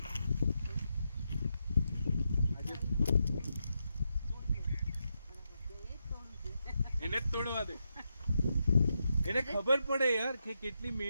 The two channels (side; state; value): both; inverted; correlation -0.84